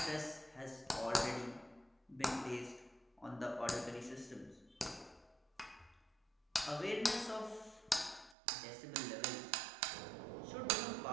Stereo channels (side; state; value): left; drops out; at 8.3 s